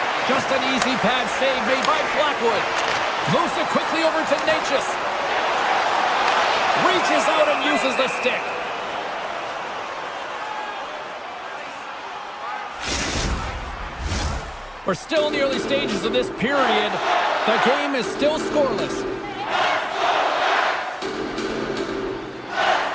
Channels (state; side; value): identical; both; correlation 1.00